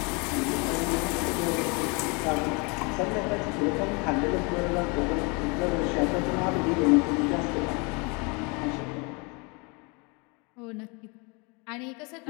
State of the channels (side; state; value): right; quieter; 30.4 dB